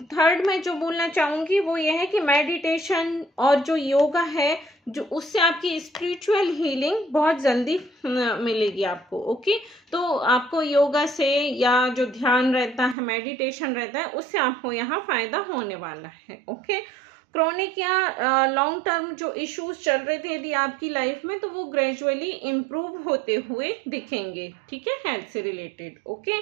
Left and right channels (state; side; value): drops out; left; at 13.0 s